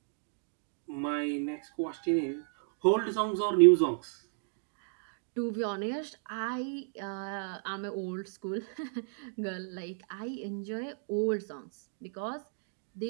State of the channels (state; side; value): silent; left; digital silence